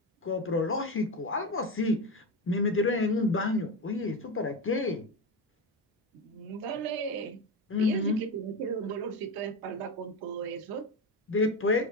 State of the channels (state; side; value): normal; both; correlation 0.18